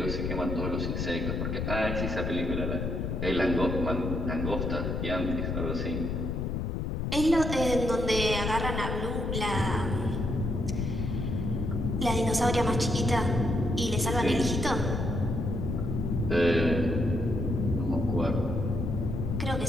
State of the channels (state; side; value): noise; left; rumble, 1 dB below the sound